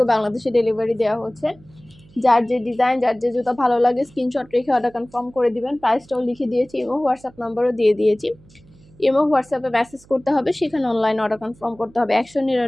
বাংলাদেশে ডেলিভারি দেওয়া হচ্ছে। যার যে ডিজাইন, যার যে জুতা ভালো লাগে স্ক্রিনশট রেখে অর্ডার কনফার্ম করে দিবেন। প্রাইসটাও লিখে দিয়েছি, ইমো হোয়াটসঅ্যাপ নাম্বারও দিয়ে দিয়েছি। ইমো হোয়াটসঅ্যাপে মেসেজ করতে হবে, সেখানে অনলাইন অর্ডার কনফার্ম করতে হবে।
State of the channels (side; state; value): right; noise; hum, 27 dB below the sound